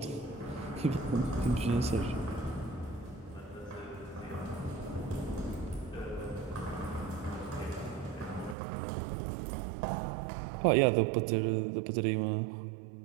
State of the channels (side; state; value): left; drops out; at 8.6 s